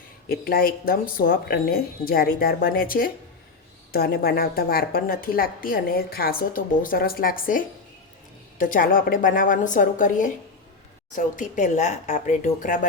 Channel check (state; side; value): quieter; right; 4.2 dB